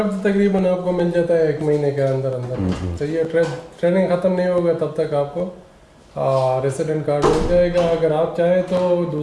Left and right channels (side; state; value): both; identical; correlation 1.00